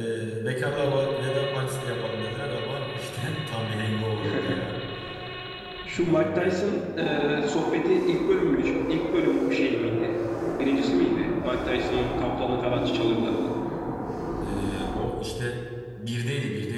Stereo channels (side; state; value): both; identical; correlation 1.00